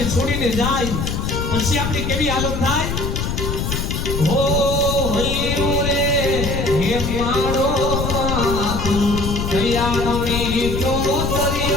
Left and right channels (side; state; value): left; noise; rumble, 2 dB below the sound